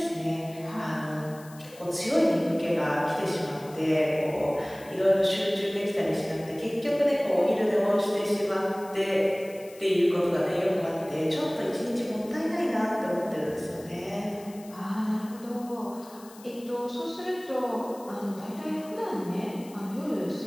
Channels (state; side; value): noise; left; hiss, 22 dB below the sound